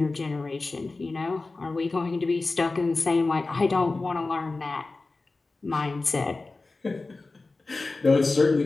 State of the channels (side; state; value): right; quieter; 3.5 dB